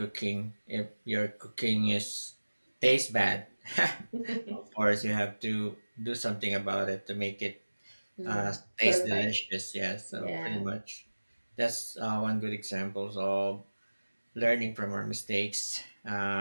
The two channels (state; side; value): inverted; both; correlation -1.00